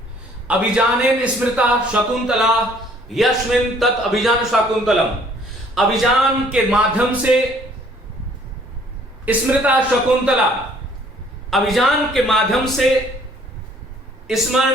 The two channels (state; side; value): normal; both; correlation 0.59